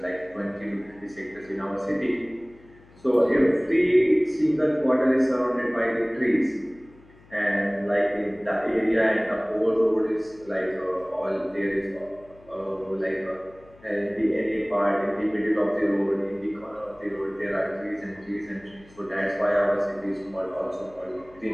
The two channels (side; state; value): left; noise; hum, 26 dB below the sound